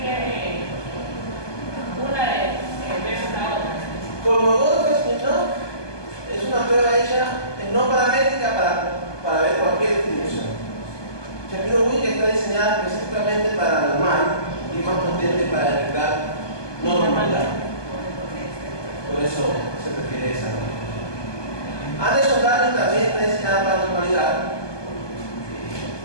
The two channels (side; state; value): right; late; 1.2 ms